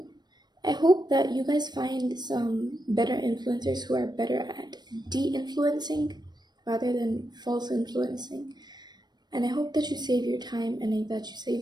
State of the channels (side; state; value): left; late; 0.20 ms